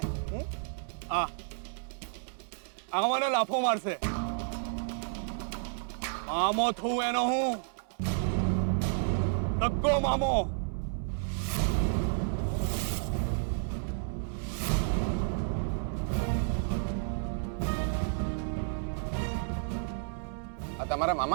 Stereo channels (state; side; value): silent; left; 57 dB below the other